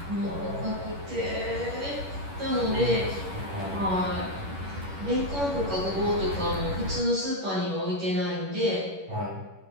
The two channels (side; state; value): left; late; 11 ms